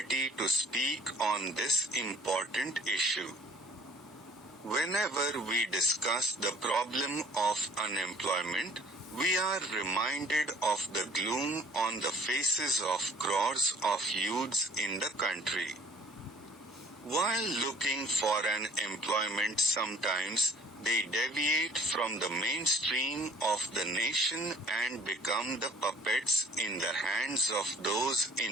to speak on this important issue. Whenever we discuss the problem of unemployment, we are reminded of the gloom on the faces of crores of youths in the country. While looking for an employment, sometimes they deviate from the mainstream of the nation and become the puppets in the hands of those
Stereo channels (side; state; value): both; normal; correlation 0.53